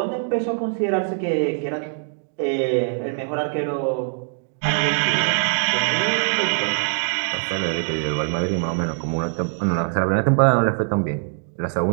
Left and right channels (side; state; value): left; silent; 62 dB below the other